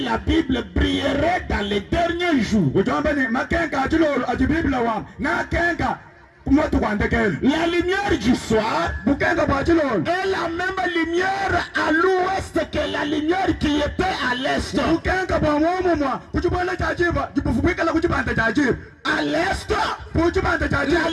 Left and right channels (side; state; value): both; identical; correlation 1.00